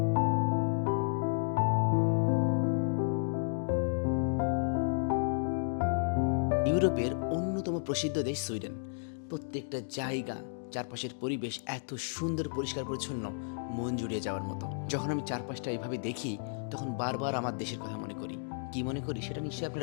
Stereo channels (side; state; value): right; silent; digital silence